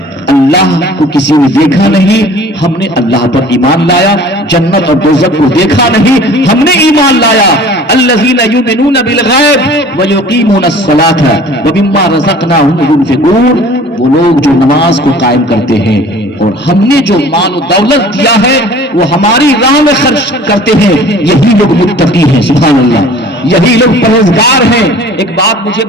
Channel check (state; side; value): normal; both; correlation 0.47